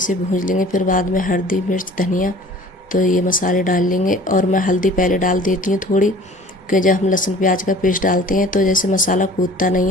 भून लेंगे, फिर बाद में हल्दी मिर्च धनिया, तो ये मसाले डाल लेंगे। और मैं हल्दी पहले डाल देती हूँ थोड़ी, कि जब हम लहसुन प्याज का पेस्ट डालते हैं तो जैसे मसाला कूदता नहीं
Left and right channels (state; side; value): normal; both; correlation 0.48